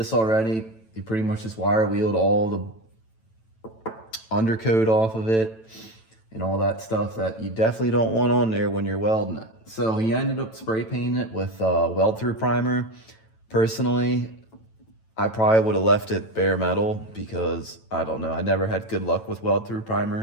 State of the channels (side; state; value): right; late; 9.0 ms